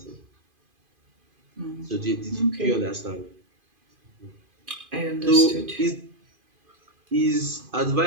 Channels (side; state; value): left; late; 2.5 ms